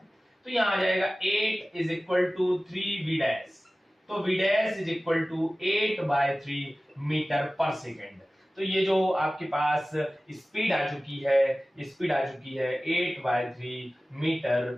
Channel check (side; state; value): both; normal; correlation 0.97